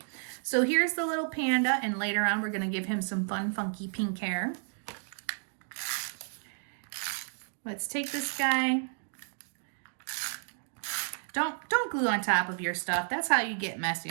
So here's the little panda, and later on we're going to give him some fun, funky pink hair. Let's take this guy. Don't glue on top of your stuff. That's how you get messy.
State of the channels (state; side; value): silent; left; 57 dB below the other